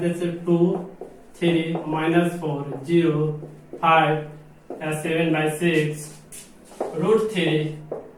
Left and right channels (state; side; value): identical; both; correlation 1.00